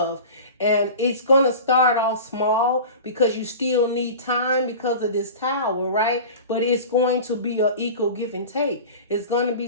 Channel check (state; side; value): inverted; both; correlation -0.35